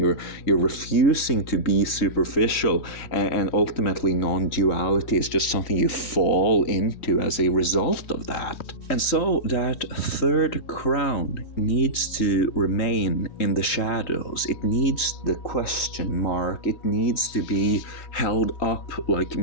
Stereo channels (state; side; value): late; right; 3.1 ms